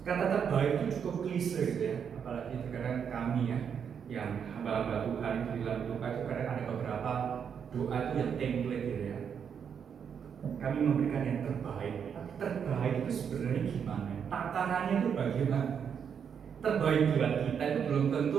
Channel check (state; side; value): quieter; left; 7.4 dB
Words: kata terbaik itu cukup klise gitu ya, apalagi terkadang kami ya yang hamba-hamba Tuhan itu di dalam doa itu kadang ada beberapa doa itu yang template gitu ya, kami memberikan yang terbaik. Tapi terbaik itu sebenarnya gimana? Takarannya itu bagaimana? Terbaik buat kita itu belum